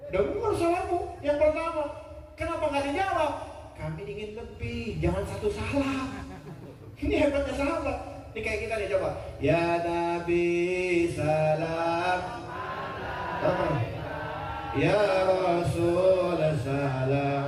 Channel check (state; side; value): identical; both; correlation 1.00